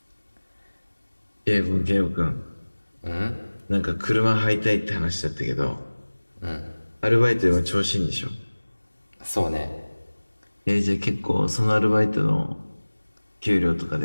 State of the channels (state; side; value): inverted; both; correlation -1.00